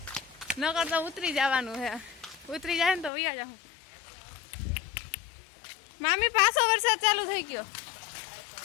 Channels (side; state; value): right; drops out; at 3.1 s